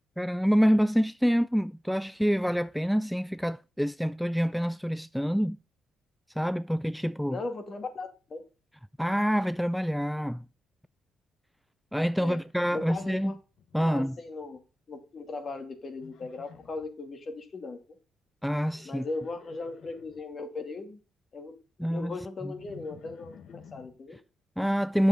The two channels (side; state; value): both; normal; correlation 0.98